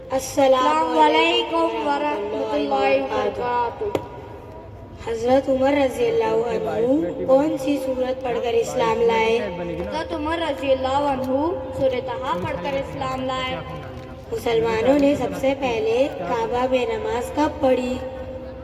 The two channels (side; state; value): both; identical; correlation 1.00